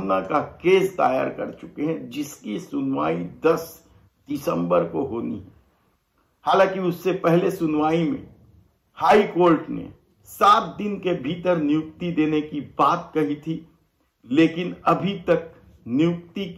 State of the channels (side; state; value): both; identical; correlation 1.00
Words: का केस दायर कर चुके हैं, जिसकी सुनवाई 10 दिसंबर को होनी है। हालांकि उससे पहले सुनवाई में हाई कोर्ट ने 7 दिन के भीतर नियुक्ति देने की बात कही थी, लेकिन अभी तक नियुक्ति